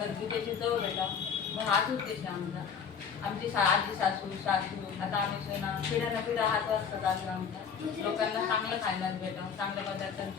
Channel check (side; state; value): right; quieter; 6.8 dB